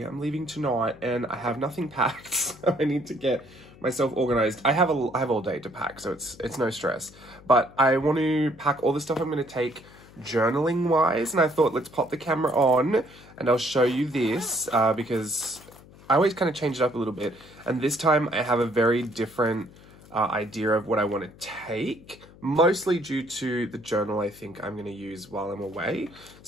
I'm leaving tonight and I have nothing packed, so I need to get myself organized. I have all day to pack, so it's no stress. But I want to pack all the stuff I'm going to take journaling wise, and I thought let's pop the camera on and I'll show you this because I always kind of change it up a little bit, and this time I have a very different idea of what I want to take, mostly due to the journal I think I'm going to use while I'm away.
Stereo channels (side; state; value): left; noise; hum, 22 dB below the sound